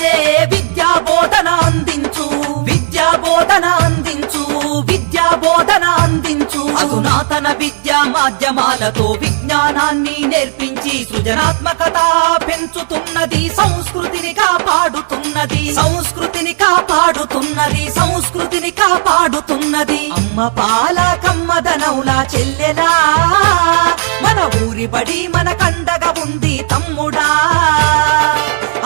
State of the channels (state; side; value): silent; left; 62 dB below the other